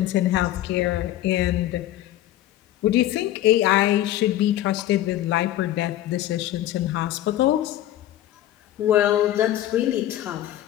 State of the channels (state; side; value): quieter; right; 13.7 dB